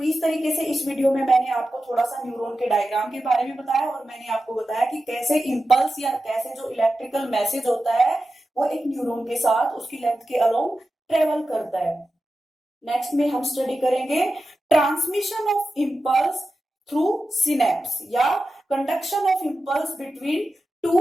इस तरीके से इस वीडियो में मैंने आपको थोड़ा सा न्यूरॉन के डायग्राम के बारे में बताया और मैंने आपको बताया कि कैसे इंपल्स या कैसे जो इलेक्ट्रिकल मैसेज होता है वो एक न्यूरॉन के साथ उसकी लेंथ के अलोंग ट्रेवल करता है। नेक्स्ट में हम स्टडी करेंगे transmission of impulse through synapse या conduction of impulse between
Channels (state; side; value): normal; both; correlation 0.92